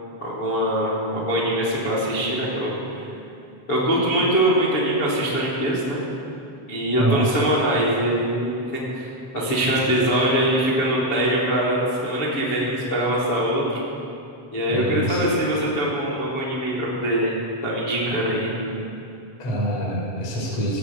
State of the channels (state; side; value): late; right; 7.1 ms